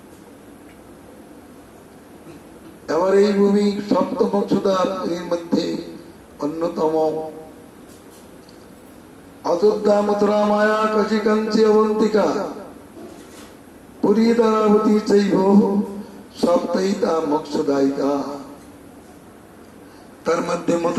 এবার এই ভূমি সপ্তমক্ষদার মধ্যে অন্যতম। অযোধ্যা, মথুরা, মায়া, কাশী, কাঞ্চি, অবন্তিকা, পুরী, দ্বারাবতী চৈব সপ্তাহিতা মোক্ষদায়িকা। তার মধ্যে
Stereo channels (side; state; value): both; identical; correlation 1.00